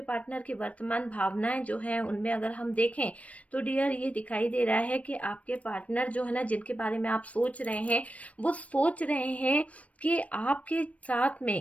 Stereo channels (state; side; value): late; right; 0.065 ms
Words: पार्टनर की वर्तमान भावनाएं जो है उनमें अगर हम देखें तो डियर ये दिखाई दे रहा है कि आपके पार्टनर जो है ना, जिनके बारे में आप सोच रहे हैं, वो सोच रहे हैं कि आपके साथ